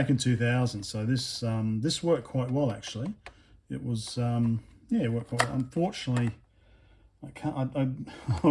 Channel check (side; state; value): both; identical; correlation 1.00